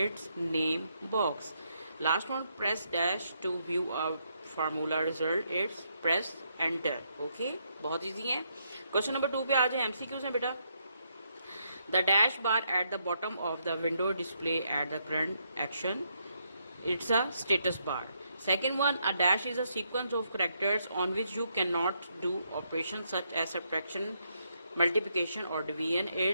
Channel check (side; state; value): both; inverted; correlation -0.77